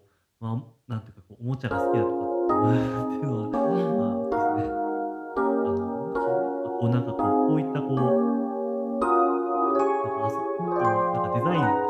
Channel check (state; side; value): identical; both; correlation 1.00